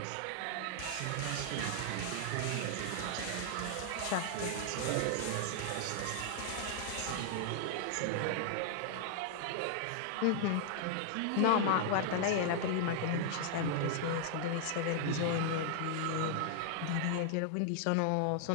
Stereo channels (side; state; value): both; different; correlation 0.00